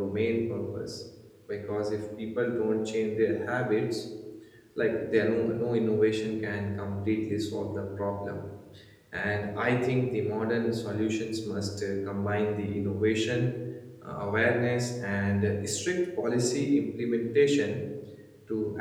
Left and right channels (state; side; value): identical; both; correlation 1.00